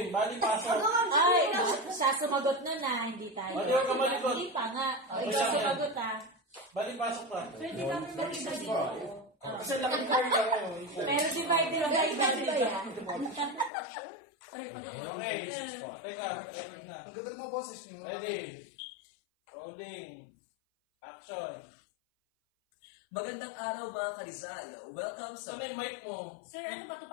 Bali pasok. Ay, siya sumagot na na, hindi tayo. Hindi ka malikot. Hindi pa nga. Okay, Ikaw siya. sumagot ha. Bali pasok pa. Pwede kami makita dito. Kasi laki card lang ako. Pero divided by yan. Okay. Teka, record na. Ang ganda ng mga boses niyo. Ready. Rolling. Action. Magandang araw mga ka-Rizal. Welcome sa... So, may mic mo. Sir, ano ba ito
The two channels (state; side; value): drops out; right; at 13.7 s